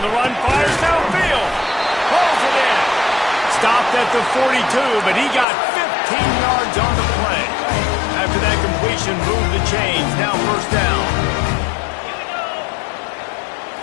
the run, fires downfield. Pulls it in. Stopped at the 42, but he got 15 yards on the play. After that completion, moved the chains. Now first down.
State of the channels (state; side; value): drops out; right; at 5.5 s